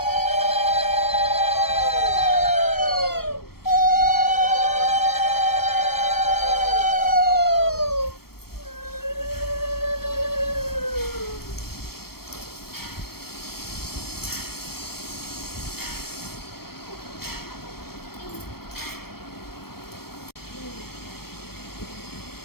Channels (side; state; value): right; late; 0.94 ms